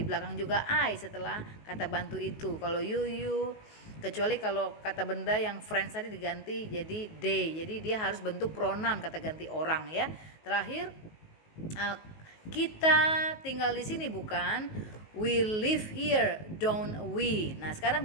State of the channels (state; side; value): late; right; 19 ms